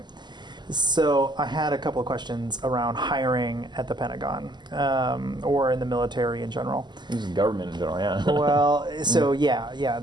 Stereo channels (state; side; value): late; left; 0.21 ms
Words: So I had a couple of questions around hiring at the Pentagon, or in the military in general. This is government in general, yeah. Well, so yeah,